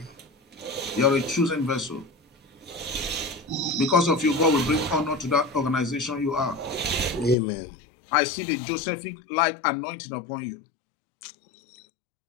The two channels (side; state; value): right; drops out; at 7.4 s